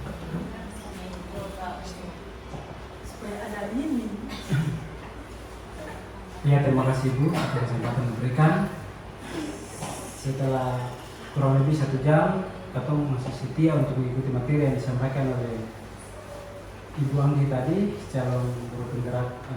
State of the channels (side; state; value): both; identical; correlation 1.00